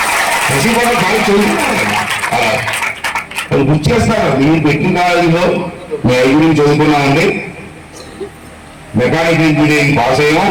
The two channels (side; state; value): both; identical; correlation 1.00